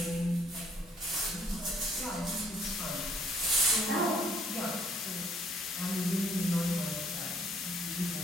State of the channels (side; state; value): both; normal; correlation 0.63